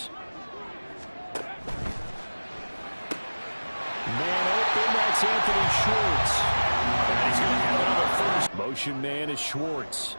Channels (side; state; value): both; inverted; correlation -1.00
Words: Man open, that's Anthony Schwartz. And he's going to have another 1st. Motion man is Schwartz.